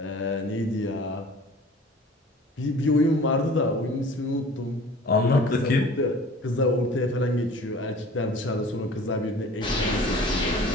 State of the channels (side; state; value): both; normal; correlation 0.45